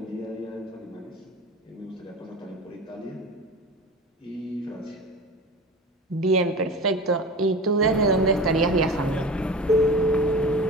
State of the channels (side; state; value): both; normal; correlation 0.33